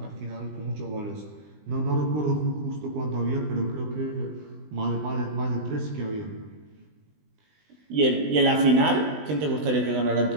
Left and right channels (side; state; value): left; late; 20 ms